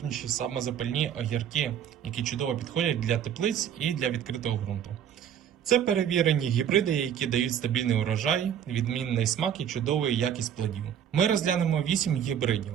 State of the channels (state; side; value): quieter; left; 9.2 dB